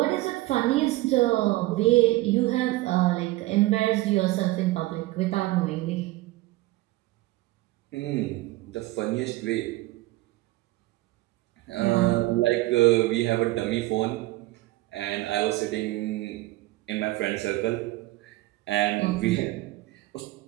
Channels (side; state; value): left; quieter; 18.7 dB